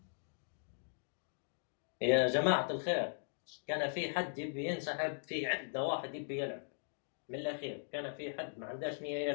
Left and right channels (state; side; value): silent; right; digital silence